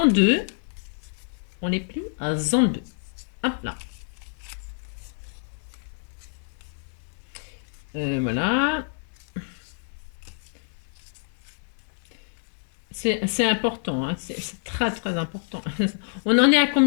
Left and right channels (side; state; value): right; silent; digital silence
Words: deux. On les plie en deux. Hop là. Voilà. C'est important, hein. C'est très très important. On en est à